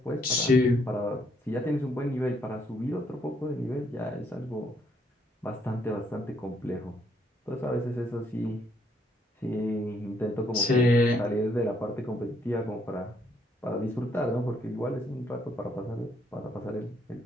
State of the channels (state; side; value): normal; both; correlation 0.71